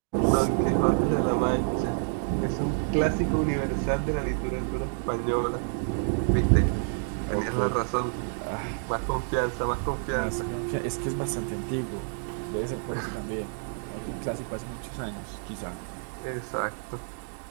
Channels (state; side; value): silent; left; 59 dB below the other